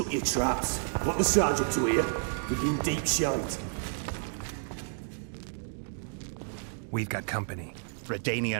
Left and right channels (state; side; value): silent; left; digital silence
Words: your traps. Want the sergeant to hear? We've been deep shite. We've got company.